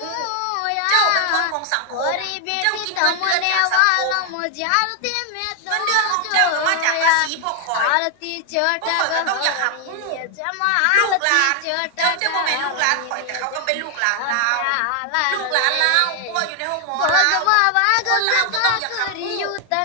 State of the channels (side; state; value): both; different; correlation 0.00